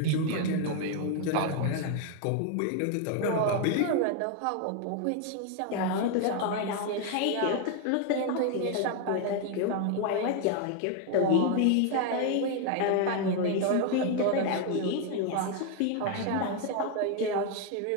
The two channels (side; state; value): both; different; correlation 0.01